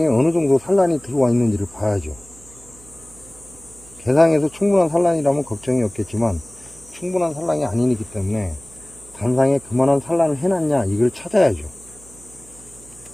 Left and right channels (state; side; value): noise; right; hum, 23 dB below the sound